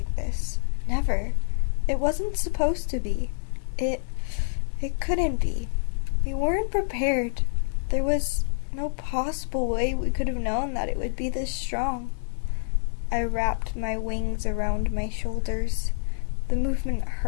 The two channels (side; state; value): right; silent; digital silence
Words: this. Never. It wasn't supposed to be. It couldn't be. We weren't prepared. There was no possible way we could have known that it would be this strong. I wrapped my wings around my shoulders. The movement